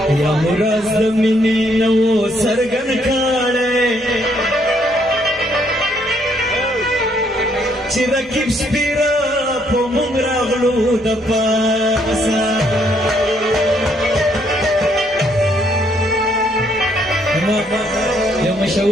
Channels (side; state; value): both; normal; correlation 0.70